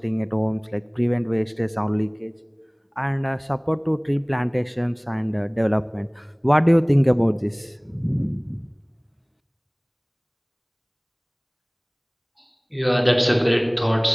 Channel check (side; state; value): both; identical; correlation 1.00